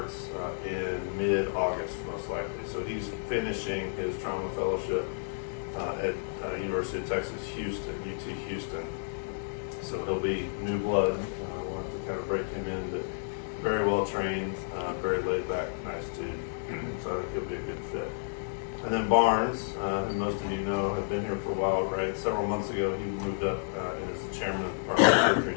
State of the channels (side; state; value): right; silent; digital silence